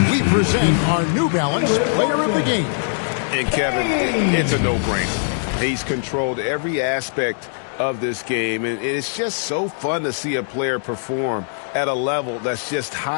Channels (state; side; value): silent; right; digital silence